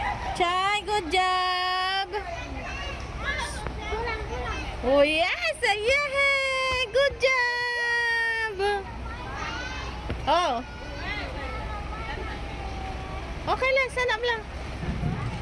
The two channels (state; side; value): identical; both; correlation 1.00